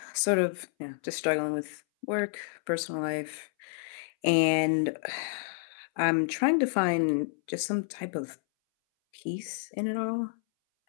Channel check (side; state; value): right; silent; 58 dB below the other